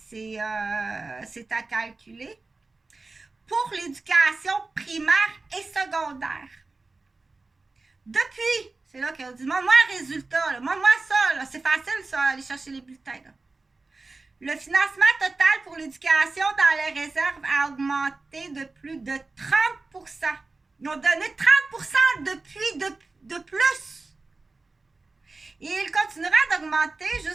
à calculer. Pour l'éducation primaire et secondaire. Depuis, c'est là qu'on dit, moi un résultat, là, moi ça, là, c'est facile ça, aller chercher les bulletins, là. Le financement total pour l'éducation dans les réserves a augmenté de plus de 30%. Ils ont donné 30% depuis de plus. Et il continuera d'augmenter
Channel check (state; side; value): quieter; left; 3.6 dB